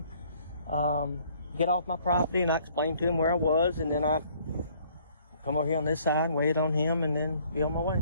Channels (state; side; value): inverted; both; correlation -0.60